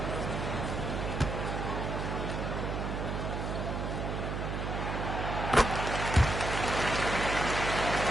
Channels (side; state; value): right; noise; hum, 2 dB below the sound